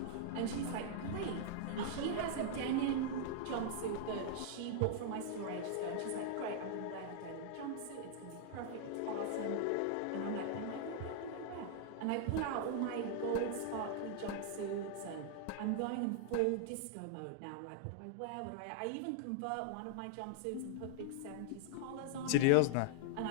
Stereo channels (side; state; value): both; different; correlation -0.01